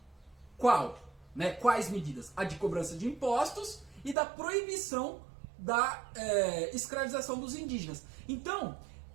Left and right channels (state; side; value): drops out; left; at 4.2 s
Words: Quais medidas? A de cobrança de impostos e da proibição da escravização dos indígenas. Então,